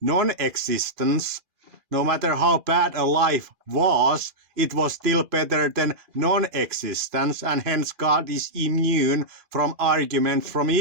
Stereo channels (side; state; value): left; late; 2.4 ms